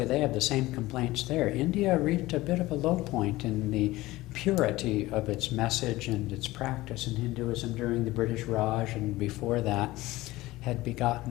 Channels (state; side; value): quieter; right; 18.4 dB